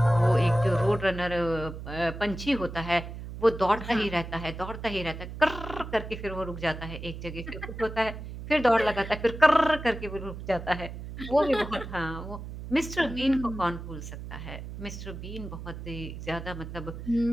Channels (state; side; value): noise; right; hum, 10 dB below the sound